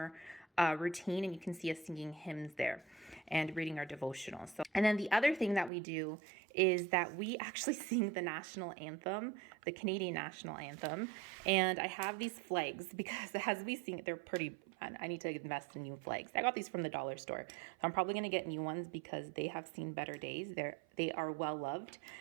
routine, and you can see us singing hymns there and reading our devotional. And then the other thing that we do is that we actually sing the national anthem, the Canadian national anthem. And I have these flags because as we sing it, they're pretty, I need to invest in new flags. I got these from the dollar store. So I'm probably going to get new ones because they have seen better days. They are well loved.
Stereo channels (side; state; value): left; drops out; at 5.7 s